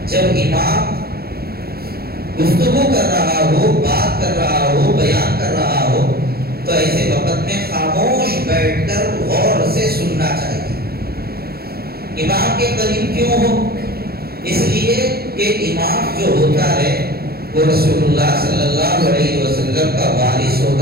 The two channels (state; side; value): late; left; 0.45 ms